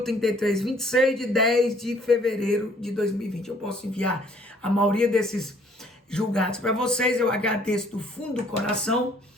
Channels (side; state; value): both; normal; correlation 0.61